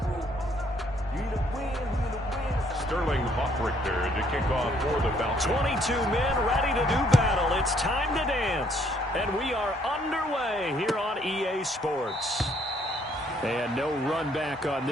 Sterling Hoffrichter to kick off for the Falcons. 22 men ready to do battle. It's time to dance. And we are underway here on EA Sports. And no run back on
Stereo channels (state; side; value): normal; both; correlation 0.66